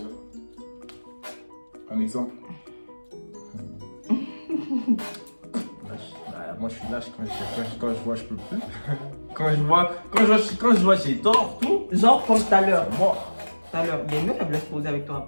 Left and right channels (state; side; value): inverted; both; correlation -1.00